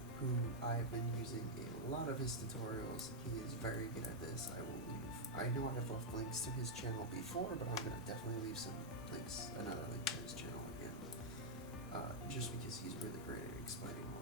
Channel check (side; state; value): both; normal; correlation -0.03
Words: who I've been using a lot of his tutorials. He is very good at this. I know I have left links to his channel before, but I'm going to definitely leave some links, another link to his channel again, just because he's really great at explaining all